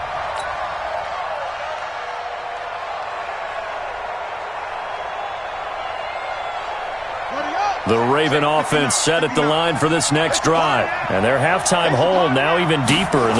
The Raven offense set at the line for this next drive. And their halftime hole now even deeper. And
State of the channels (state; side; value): identical; both; correlation 1.00